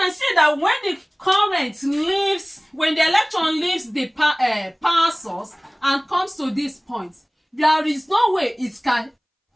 see that when the current leaves, when the electron leaves the power source and comes to this point, there is no way it can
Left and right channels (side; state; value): both; identical; correlation 1.00